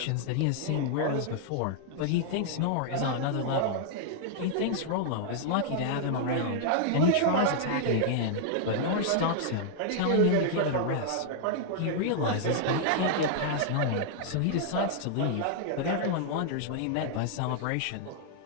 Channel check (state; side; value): different; both; correlation -0.01